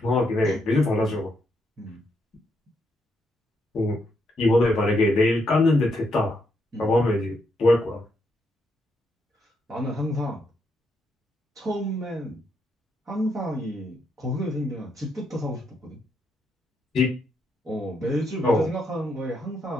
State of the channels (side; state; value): both; normal; correlation 0.78